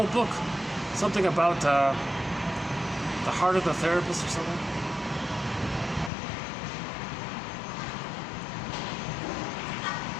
book. Something about the heart of the therapist or something.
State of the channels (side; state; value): right; drops out; at 6.1 s